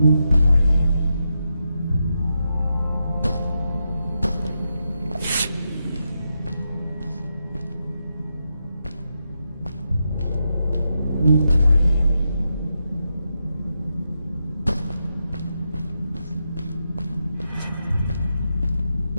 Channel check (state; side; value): inverted; both; correlation -0.85